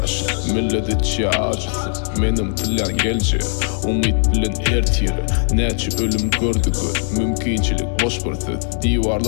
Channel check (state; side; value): silent; right; 66 dB below the other